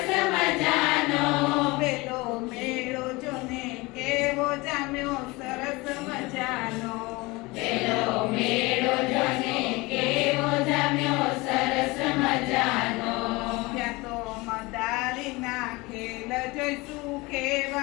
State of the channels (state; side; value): quieter; right; 23.4 dB